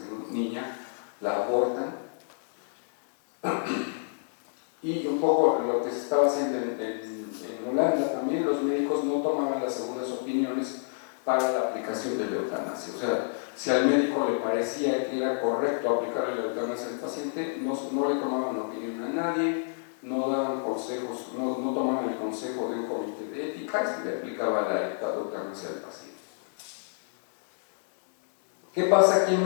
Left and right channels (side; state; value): right; silent; digital silence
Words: es niña, la abortan. Y un poco lo que se estaba haciendo en Holanda también, los médicos no tomaban las segundas opiniones para la aplicación de la eutanasia. O sea, si al médico le parecía que era correcto aplicarle la eutanasia al paciente, no le tomaban opinión a nadie, no daban consejos, no tomaban el consejo de un comité de ética y se le aplicaba la eutanasia al paciente. ¿Qué pasa aquí en